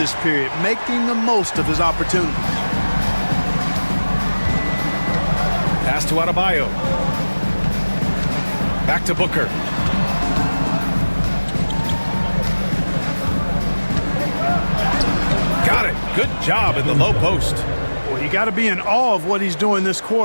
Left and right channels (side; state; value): both; inverted; correlation -1.00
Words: period, making the most of his opportunity. Pass to Adebayo. Back to Booker. Got it. Good job in the low post. Well, you got to be in awe of what he's doing this